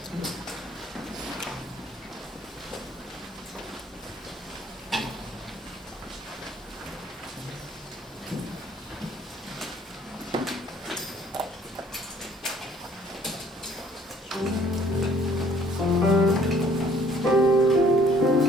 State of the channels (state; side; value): normal; both; correlation 0.59